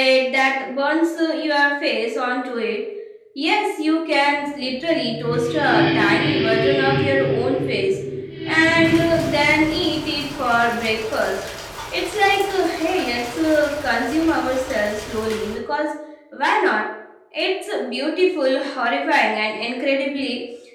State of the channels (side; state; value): both; identical; correlation 1.00